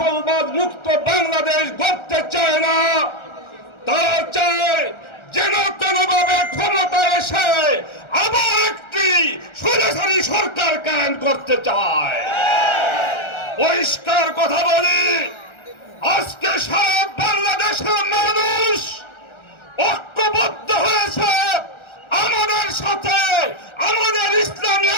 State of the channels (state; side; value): late; right; 1.3 ms